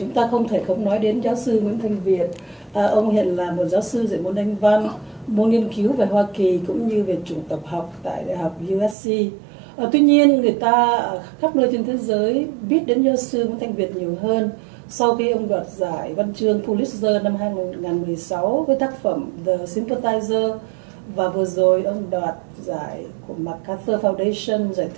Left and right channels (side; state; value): left; drops out; at 9.0 s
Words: ta không thể không nói đến giáo sư NguyễnThanh Viet. Ông hiện là một giáo sư dạy môn Anh văn, môn nghiên cứu về Hoa Kỳ cũng như về chủng tập học tại Đại học USC. Tuy nhiên, người ta khắp nơi trên thế giới biết đến giáo sư NguyễnThanh Viet nhiều hơn sau khi ông đoạt giải văn chương Pulitzer năm 2016 với tác phẩm The Sympathizer, và vừa rồi ông đoạt giải của MacArthur Foundation, giải